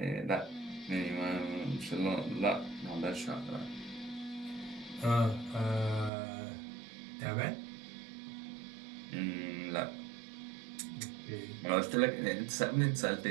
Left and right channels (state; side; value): drops out; left; at 6.1 s